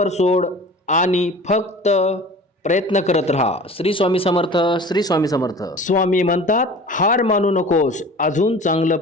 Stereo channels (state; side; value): normal; both; correlation 0.41